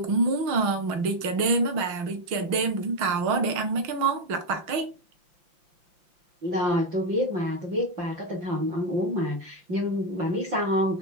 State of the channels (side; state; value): left; late; 5.8 ms